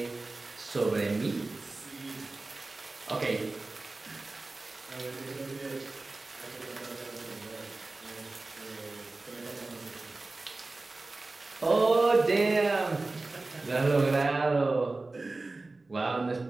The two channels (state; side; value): quieter; left; 3.3 dB